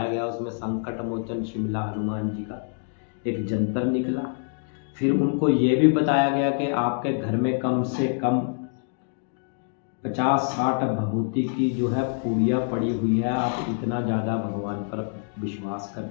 गया उसमें संकट मोचन शिमला हनुमान जी का एक जंतर निकला। फिर उनको ये भी बताया गया कि आपके घर में कम से कम 50-60 भभूति की जो है पूड़ियाँ पड़ी हुई है, आप इतना ज़्यादा भगवान पर विश्वास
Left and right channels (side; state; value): right; silent; 59 dB below the other